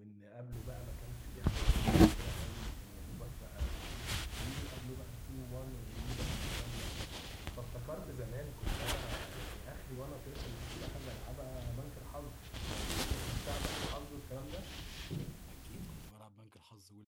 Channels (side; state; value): both; identical; correlation 1.00